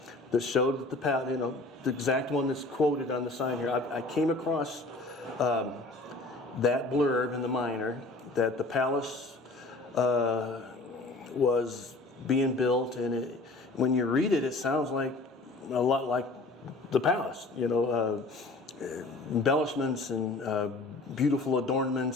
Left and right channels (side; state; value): right; quieter; 3.0 dB